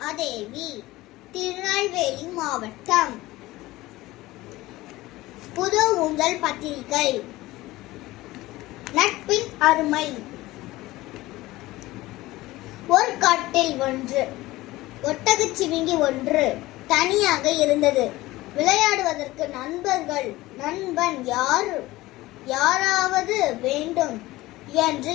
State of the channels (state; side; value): quieter; right; 18.4 dB